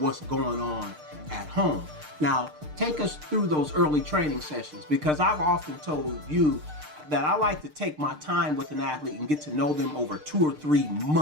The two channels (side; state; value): left; late; 6.6 ms